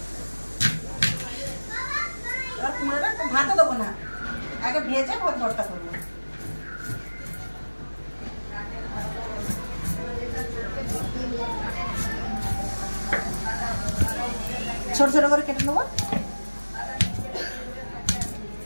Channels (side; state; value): both; inverted; correlation -1.00